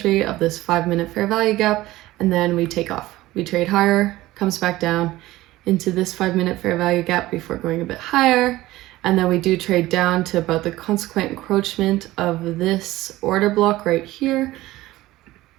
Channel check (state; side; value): quieter; left; 17.3 dB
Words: of this 5-minute fair value gap, and then we take off. We trade higher, comes back down into this 5-minute fair value gap before going a bit higher, and then we do trade down to about the consequent encroachment of this order block right here.